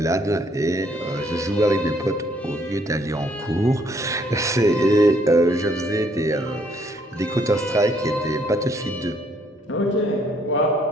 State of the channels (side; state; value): both; normal; correlation 0.67